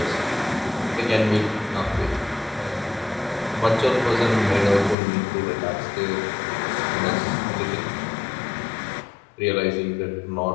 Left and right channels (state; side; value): drops out; right; at 5.0 s